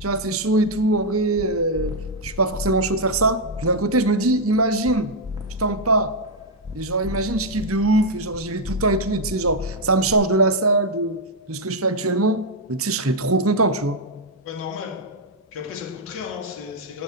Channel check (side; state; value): both; normal; correlation -0.02